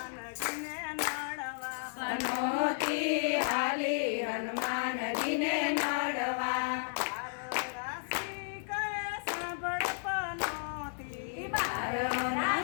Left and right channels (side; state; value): right; silent; digital silence